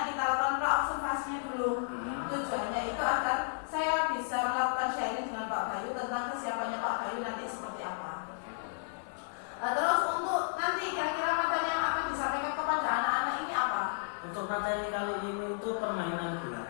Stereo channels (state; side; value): silent; right; digital silence